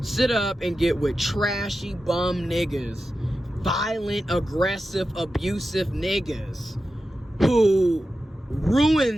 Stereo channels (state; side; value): normal; both; correlation 0.92